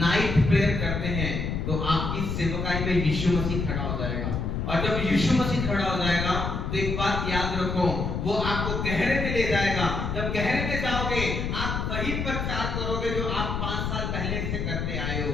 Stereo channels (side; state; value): left; noise; rumble, 2 dB below the sound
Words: प्रेयर करते हैं, तो आपकी सेवकाई में यीशु मसीह खड़ा हो जाएगा। और जब यीशु मसीह खड़ा हो जाएगा तो एक बात याद रखो, वो आपको गहरे में ले जाएगा। जब गहरे में जाओगे, आप वही प्रचार करोगे जो आप 5 साल पहले से करते आए हो,